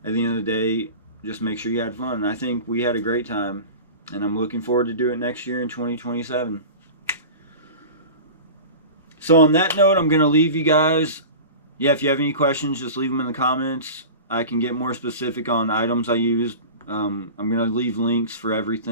at the end of the day, just make sure you had fun. And I think we had a great time, and I'm looking forward to do it next year in 2027. So on that note, I'm going to leave you guys. Yeah, if you have any questions, just leave them in the comments. I can get more specific on items I used. I'm going to leave links for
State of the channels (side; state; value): both; inverted; correlation -0.34